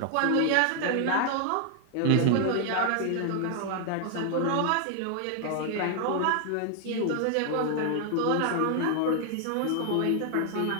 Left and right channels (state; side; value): different; both; correlation 0.00